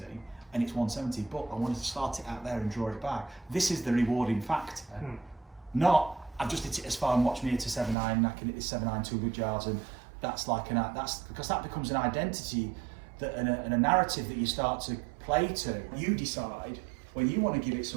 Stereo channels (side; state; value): left; drops out; at 8.0 s